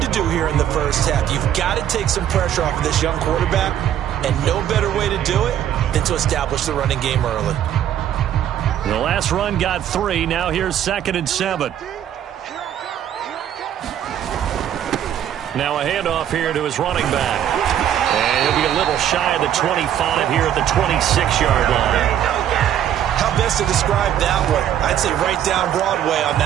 to do here in the first half. You've got to take some pressure off of this young quarterback, and no better way to do it than to establish the running game early. The last run got 3. Now here's 2nd and 7. Now a handoff here to his running back. And he'll be a little shy of the 25 here at the 26-yard line. How best to describe that one? I'd say right down Broadway on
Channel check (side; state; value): left; quieter; 10.5 dB